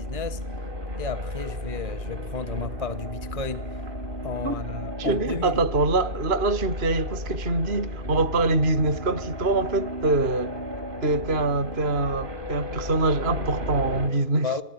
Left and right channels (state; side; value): late; left; 2.5 ms